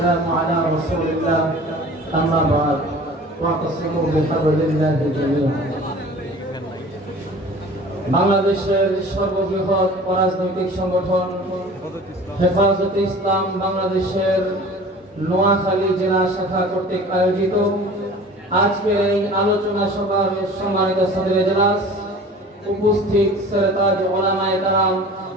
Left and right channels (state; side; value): normal; both; correlation 0.43